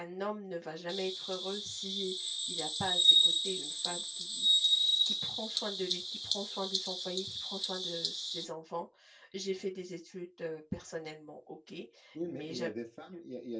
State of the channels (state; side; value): identical; both; correlation 1.00